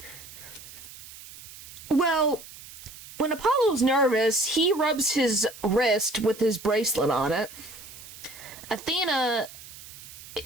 Well, when Apollo's nervous, he rubs his wrist with his bracelet on it. Athena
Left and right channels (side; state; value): right; noise; hiss, 16 dB below the sound